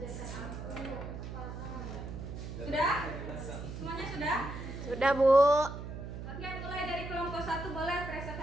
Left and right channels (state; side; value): noise; right; hum, 8 dB below the sound